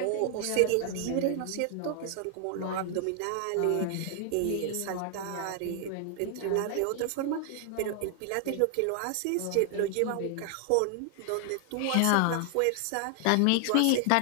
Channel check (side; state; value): both; different; correlation 0.00